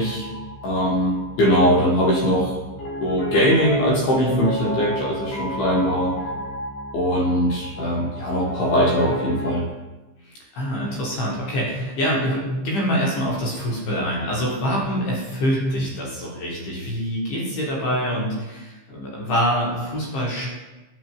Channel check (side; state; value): right; late; 15 ms